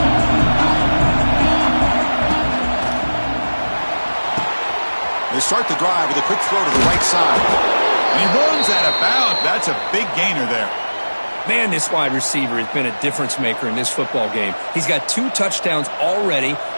They start the drive with a quick throw to the right side. And he runs out of bounds. That's a big gainer there. Man, this wide receiver has been a difference maker in this football game. He's got 2 touchdowns already.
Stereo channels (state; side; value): inverted; both; correlation -1.00